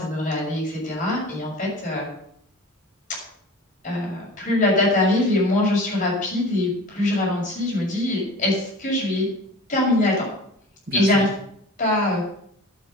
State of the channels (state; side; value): normal; both; correlation 0.39